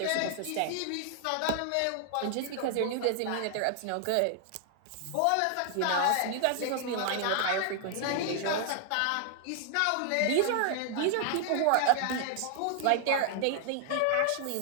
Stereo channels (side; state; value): both; different; correlation 0.00